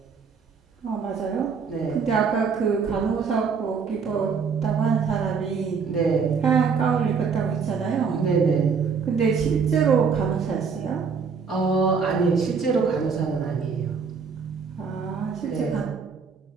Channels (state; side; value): quieter; left; 5.7 dB